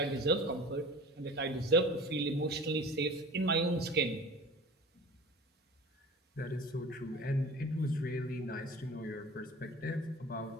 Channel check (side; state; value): both; normal; correlation 0.40